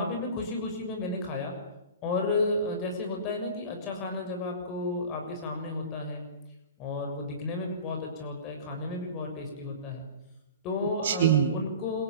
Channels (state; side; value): inverted; both; correlation -0.36